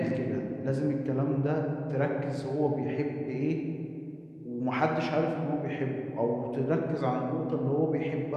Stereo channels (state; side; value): identical; both; correlation 1.00